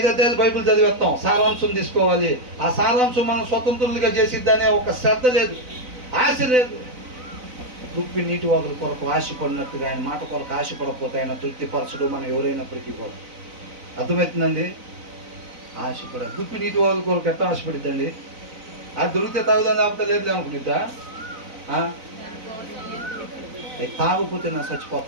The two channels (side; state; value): left; late; 4.0 ms